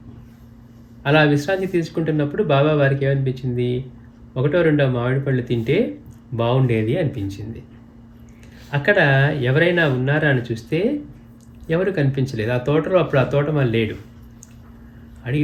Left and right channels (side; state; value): both; identical; correlation 1.00